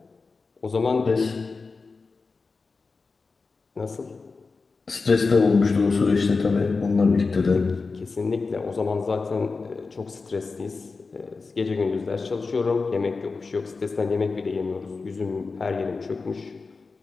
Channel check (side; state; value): right; quieter; 4.3 dB